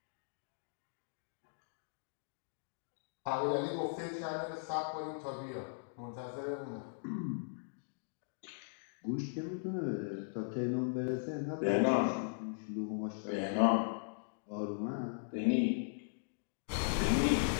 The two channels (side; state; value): right; silent; digital silence